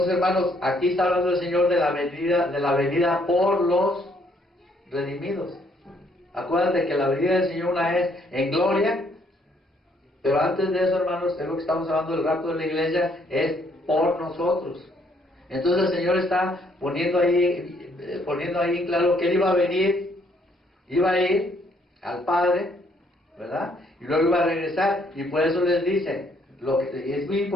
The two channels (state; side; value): normal; both; correlation 0.68